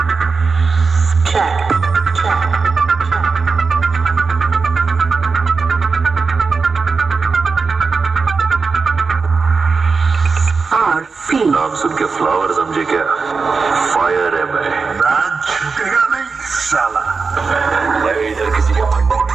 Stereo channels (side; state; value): left; quieter; 4.7 dB